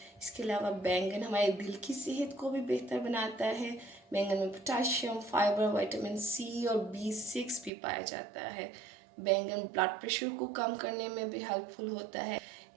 इसके अलावा बैंगन हमारे दिल की सेहत को भी बेहतर बनाता है। बैंगन में पोटाशियम, फाइबर, विटामिन सी और B6 भी पाया जाता है। बैंगन ब्लड प्रेशर को कम करने में भी हेल्पफुल होता है।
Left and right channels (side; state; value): left; drops out; at 7.7 s